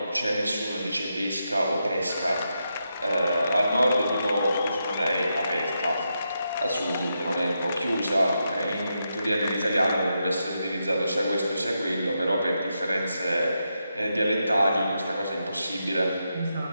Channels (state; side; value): inverted; both; correlation -0.84